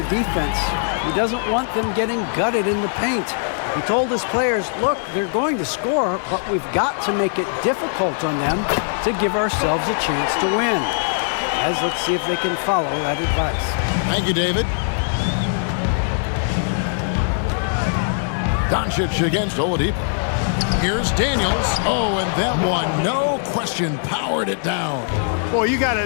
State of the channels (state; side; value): silent; right; digital silence